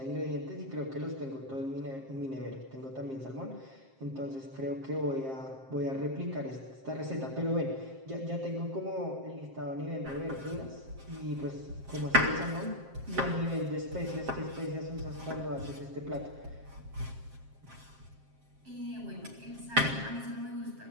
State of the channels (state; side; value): late; left; 7.5 ms